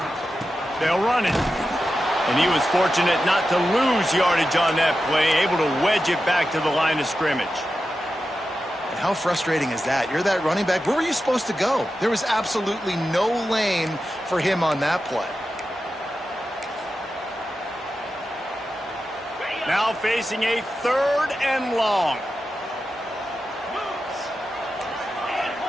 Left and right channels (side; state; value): both; normal; correlation 0.91